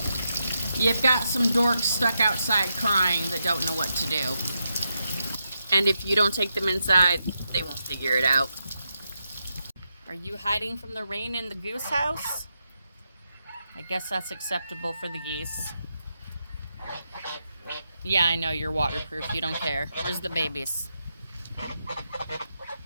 you've got some dorks stuck outside crying that don't know what to do. And if you don't take them inside, they won't figure it out. Are you hiding from the rain in the goose house? I guess that's acceptable for the geese. Yeah, I know you're waterproof. You don't care. Where's the babies?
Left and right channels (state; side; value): inverted; both; correlation -0.85